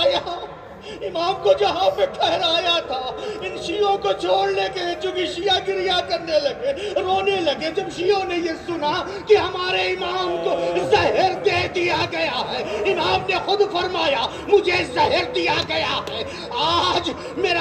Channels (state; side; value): identical; both; correlation 1.00